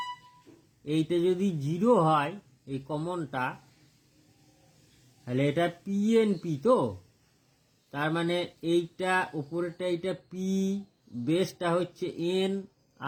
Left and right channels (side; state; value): both; identical; correlation 1.00